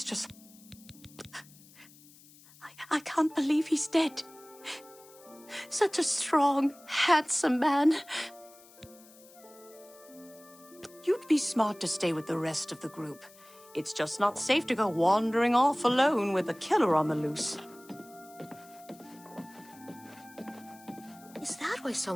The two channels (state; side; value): noise; left; hiss, 24 dB below the sound